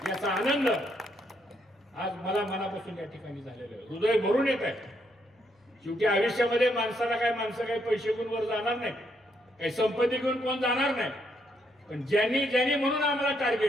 याचा आनंद आज मला मनापासून या ठिकाणी झालेला आहे. हृदय भरून येत आहे. शेवटी आयुष्यामध्ये माणसं काही पैसे घेऊन वर जाणार नाही, काही संपत्ती घेऊन कोण जाणार नाही. पण ज्यांनी म्हणून आम्हाला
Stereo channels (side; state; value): both; normal; correlation 0.75